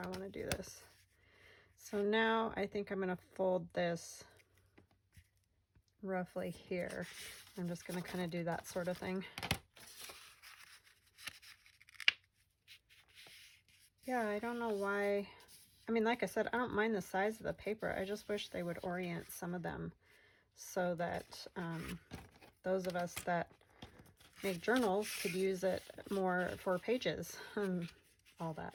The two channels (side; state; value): both; identical; correlation 1.00